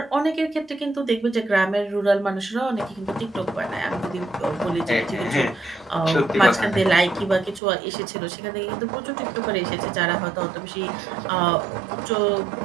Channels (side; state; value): left; drops out; at 7.6 s